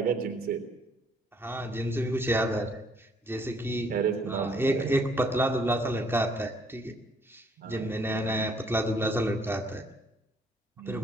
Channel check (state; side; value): normal; both; correlation 0.65